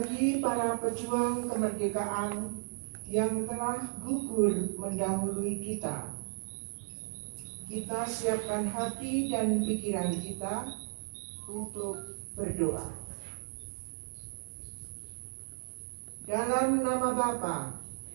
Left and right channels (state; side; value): silent; left; 55 dB below the other